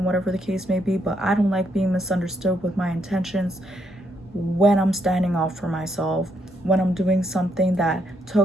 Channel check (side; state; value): both; normal; correlation 0.76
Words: whatever the case may be, but I don't like being misunderstood with my intentions when I'm standing up for myself, when I'm doing something that